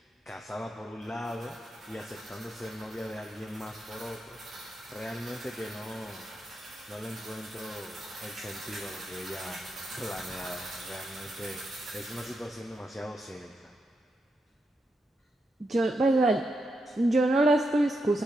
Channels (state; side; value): normal; both; correlation 0.84